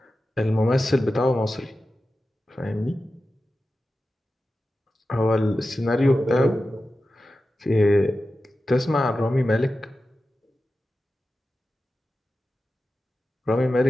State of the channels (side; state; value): both; normal; correlation 0.93